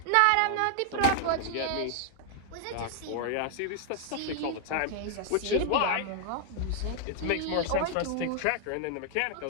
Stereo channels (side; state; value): both; different; correlation 0.00